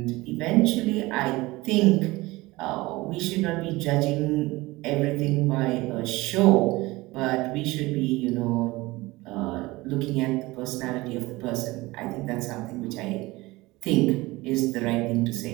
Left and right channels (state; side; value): quieter; left; 20.8 dB